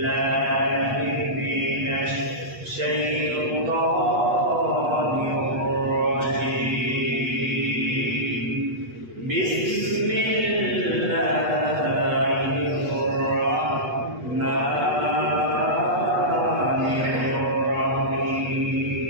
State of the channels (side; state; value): left; late; 8.2 ms